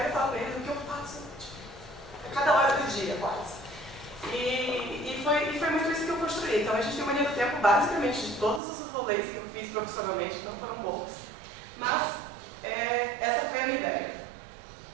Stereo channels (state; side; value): drops out; left; at 8.6 s